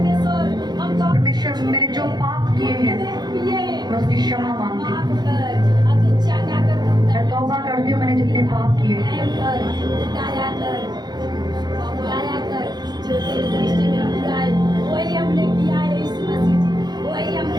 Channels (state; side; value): late; left; 0.20 ms